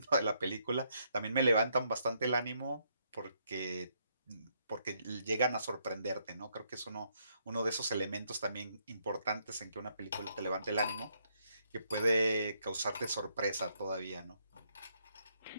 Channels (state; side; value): inverted; both; correlation -0.74